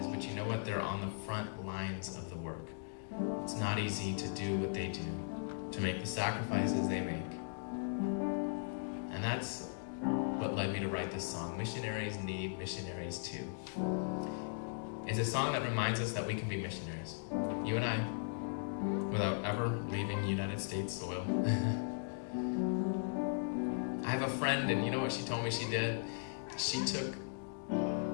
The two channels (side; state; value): right; silent; digital silence